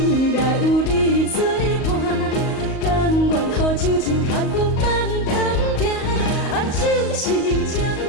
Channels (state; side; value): late; right; 38 ms